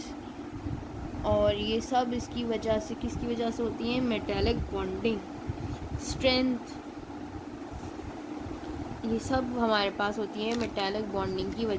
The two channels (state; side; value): identical; both; correlation 1.00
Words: और ये सब इसकी वजह से, किसकी वजह से होती है? Metallic bonding. स्ट्रेंथ, ये सब हमारे पास होती है मेटालिक बॉन्डिंग की